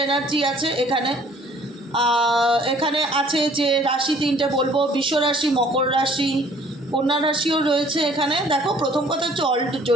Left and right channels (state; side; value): normal; both; correlation 0.56